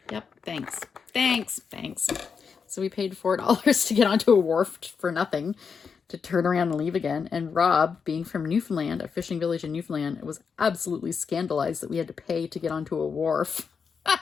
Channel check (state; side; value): quieter; right; 5.9 dB